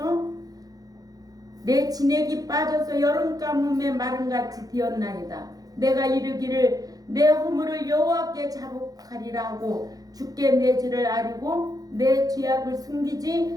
빠져서 여름 가뭄에 마름같이 되었나이다. 내가 이르기를 내 허물을 여호와께 자복하리라 하고 주께 내 죄를 아리고 내 죄악을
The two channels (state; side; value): late; left; 0.18 ms